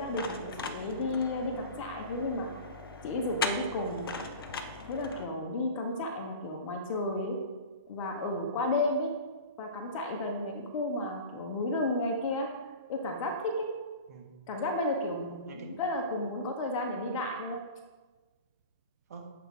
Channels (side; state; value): both; inverted; correlation -0.34